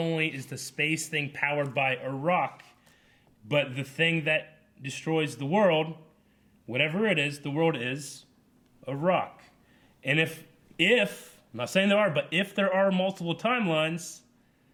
is the space thing powered by a rock, but the thing that destroys the world, whatever it is, the world is a rock. And if I'm not saying there are, but if there are multiple timelines,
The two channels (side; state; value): both; identical; correlation 1.00